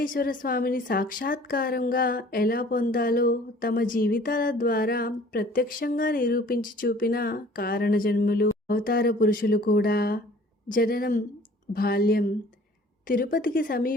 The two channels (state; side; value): normal; both; correlation 0.51